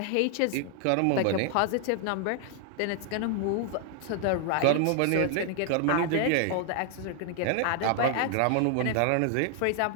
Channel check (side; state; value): both; different; correlation 0.00